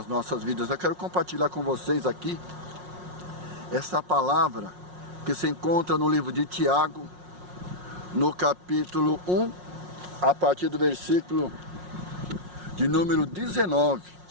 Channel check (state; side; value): late; left; 5.5 ms